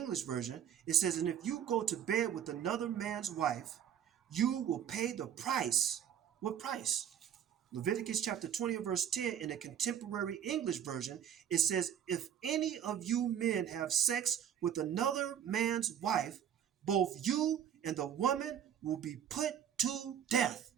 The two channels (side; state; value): left; quieter; 9.3 dB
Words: Version, it says, and if you go to bed with another man's wife, you will pay the price. What price? Leviticus chapter 20 verse 10 in the Contemporary English Version, it says, if any of you men have sex with another man's wife, both you and the woman will be put to death.